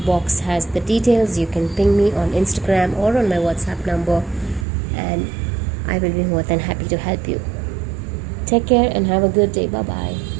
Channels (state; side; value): drops out; left; at 4.7 s